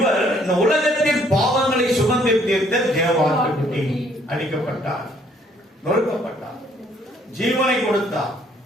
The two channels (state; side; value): normal; both; correlation 0.64